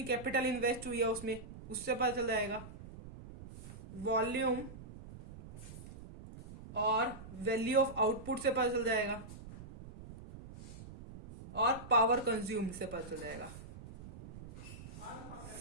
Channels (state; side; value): noise; right; rumble, 14 dB below the sound